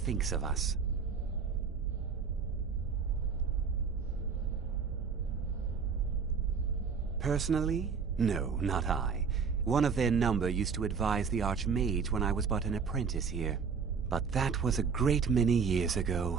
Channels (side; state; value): left; quieter; 5.9 dB